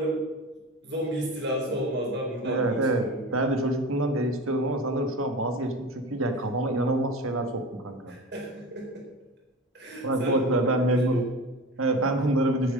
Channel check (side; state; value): both; normal; correlation 0.31